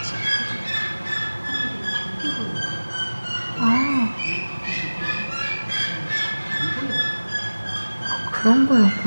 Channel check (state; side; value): inverted; both; correlation -1.00